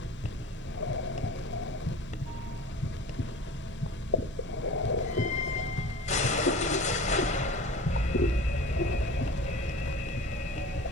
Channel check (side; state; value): both; normal; correlation 0.38